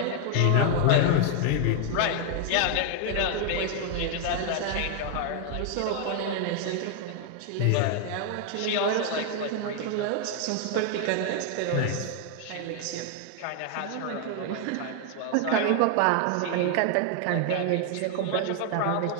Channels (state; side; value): different; both; correlation 0.00